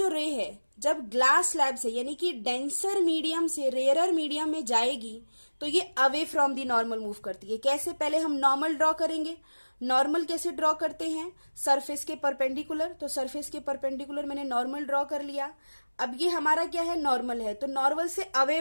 रे है जब ग्लास स्लैब से यानी कि डेंसर मीडियम से रेयरर मीडियम में जाएगी तो ये away from the normal move करती है. कैसे, पहले हम नॉर्मल ड्रॉ करेंगे. नॉर्मल कैसे ड्रॉ करते हैं, सरफेस के परपेंडिकुलर. तो सरफेस के परपेंडिकुलर मैंने नॉर्मल ड्रॉ कर लिया. अब ये हमारा क्या है, नॉर्मल है, तो नॉर्मल से अवे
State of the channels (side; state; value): both; inverted; correlation -1.00